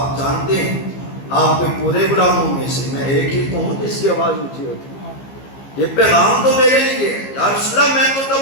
جانتے ہیں آپ کے پورے غلاموں میں سے میں ایک ہی ہوں جس کی آواز اونچی ہوتی ہے، یہ پیغام تو میرے لیے ہے۔ یا رسول اللہ میں تو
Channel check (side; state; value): right; late; 15 ms